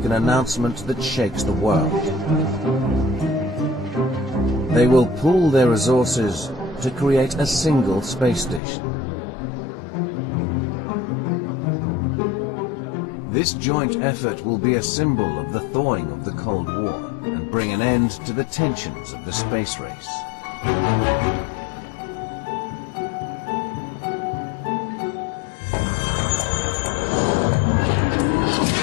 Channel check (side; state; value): right; drops out; at 8.6 s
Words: an announcement that shakes the world. They will pool their resources to create a single space station. This joint effort will be a symbol of the thawing of the Cold War and bring an end to the tensions of the space race.